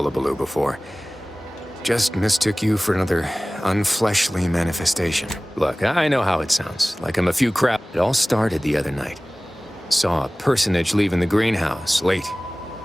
before. Just mistook you for another unfleshly manifestation. Look, I know how it sounds, like I'm a few crap. It all started the other night. Saw a personage leaving the greenhouse, late.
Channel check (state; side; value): normal; both; correlation 0.98